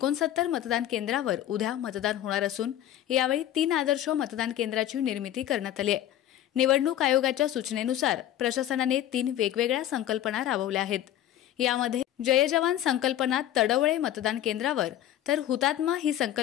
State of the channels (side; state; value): right; quieter; 12.1 dB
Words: मतदान केंद्रावर उद्या मतदान होणार असून यावेळी 3 आदर्श मतदान केंद्राची निर्मिती करण्यात आली आहे। निवडणूक आयोगाच्या सूचनेनुसार प्रशासनाने 3 वेगवेगळ्या संकल्पना राबवल्या आहेत। यामध्ये जय जवान संकल्पना तडवळे मतदान केंद्रावर तर हुतात्मा ही